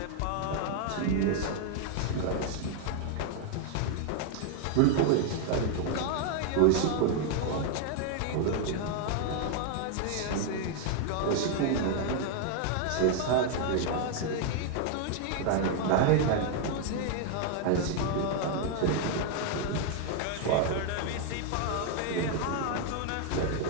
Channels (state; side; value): different; both; correlation 0.00